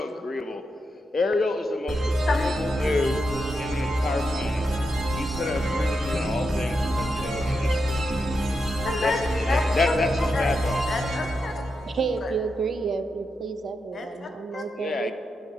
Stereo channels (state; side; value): normal; both; correlation 0.86